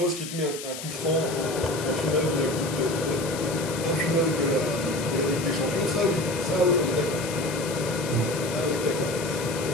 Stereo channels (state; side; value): noise; left; hiss, 9 dB below the sound